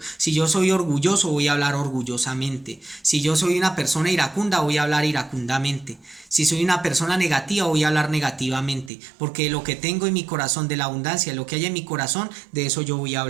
Si yo soy orgulloso, voy a hablar orgullosamente. Si yo soy una persona iracunda, voy a hablar iracundamente. Si soy una persona negativa, voy a hablar negativamente. Porque lo que tengo en mi corazón, de la abundancia, lo que hay en mi corazón, de eso yo voy a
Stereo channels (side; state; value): left; drops out; at 8.9 s